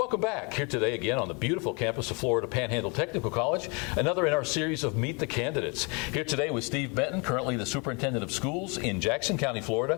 back. Here today again on the beautiful campus of Florida Panhandle Technical College, another in our series of Meet the Candidates. Here today with Steve Benton, currently the Superintendent of Schools in Jackson County,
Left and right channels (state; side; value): quieter; right; 31.4 dB